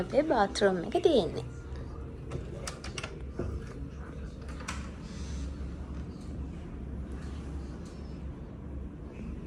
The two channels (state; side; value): identical; both; correlation 1.00